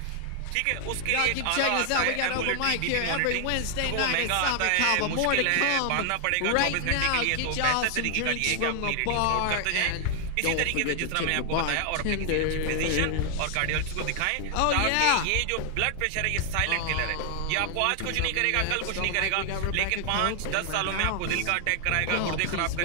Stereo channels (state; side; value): different; both; correlation 0.00